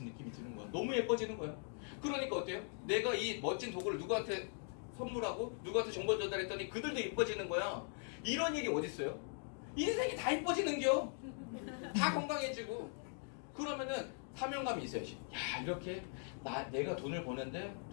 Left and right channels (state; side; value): silent; right; 51 dB below the other